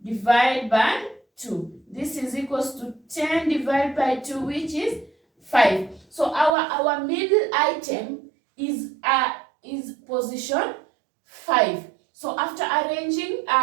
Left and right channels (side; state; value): left; drops out; at 6.5 s